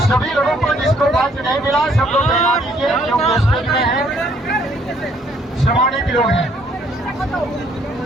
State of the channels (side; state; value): both; normal; correlation 0.65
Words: सभी लोगों को जिसको बात नहीं मिला, सब लोग बता दीजिए, जो स्टेज में है, सम्मानित लोग हैं।